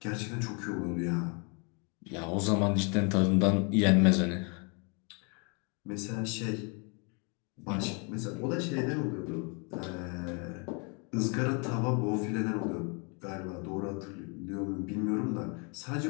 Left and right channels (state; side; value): quieter; right; 34.5 dB